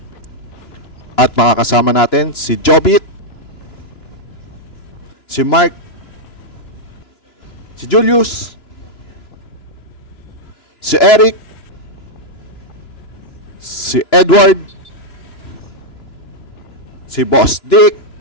At makakasama natin si Jobit, si Mark, si Julius, si Eric, si Edward, si Boss Dick,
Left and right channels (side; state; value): right; late; 2.9 ms